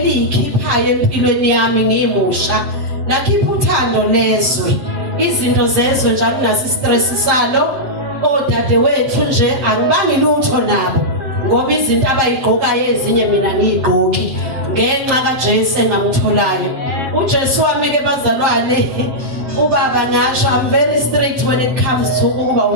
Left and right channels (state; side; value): late; left; 7.6 ms